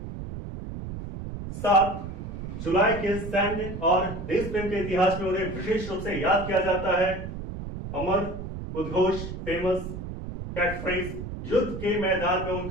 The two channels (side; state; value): right; noise; rumble, 8 dB below the sound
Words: 7 जुलाई के सैन्य और देश प्रेम के इतिहास में उन्हें विशेष रूप से याद किया जाता है। अमर उद्घोष, फेमस कैटफ्रेज, युद्ध के मैदान में